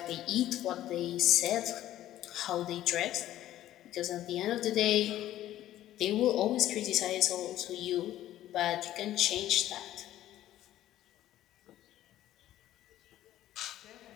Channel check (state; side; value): quieter; right; 13.4 dB